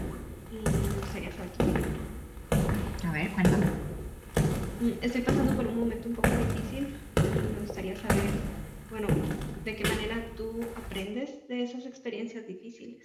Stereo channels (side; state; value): both; identical; correlation 1.00